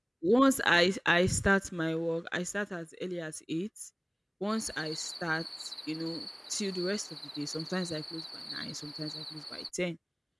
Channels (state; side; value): identical; both; correlation 1.00